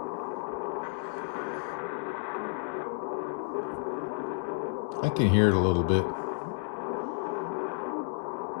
I can hear it a little bit.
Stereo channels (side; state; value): right; silent; digital silence